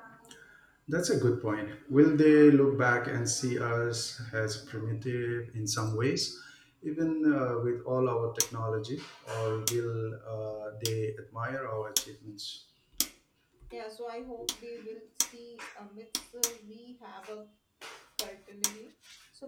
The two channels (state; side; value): identical; both; correlation 1.00